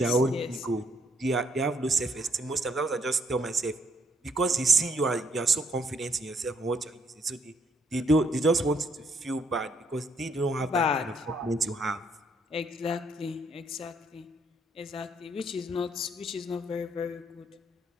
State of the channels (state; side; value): normal; both; correlation 0.70